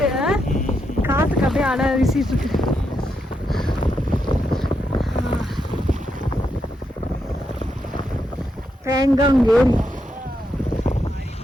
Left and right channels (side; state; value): both; normal; correlation 0.82